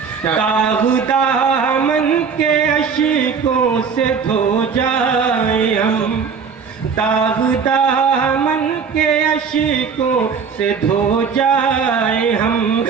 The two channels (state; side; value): quieter; left; 6.0 dB